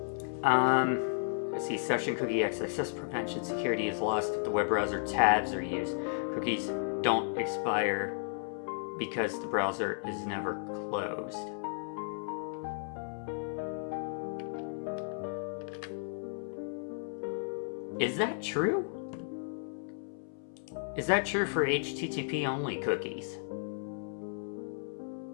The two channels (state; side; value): silent; right; 55 dB below the other